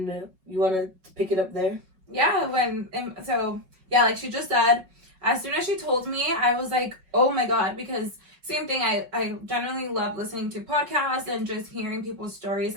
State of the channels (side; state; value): left; late; 5.4 ms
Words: you want to pick it up there? Yeah, like she just said, as soon as she told me, I was like, oh my god, because same thing, I generally love listening to podcasts and just hearing people's stories